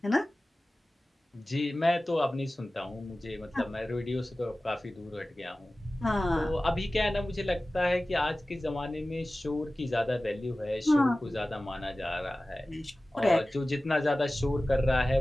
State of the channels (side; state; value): both; normal; correlation 0.97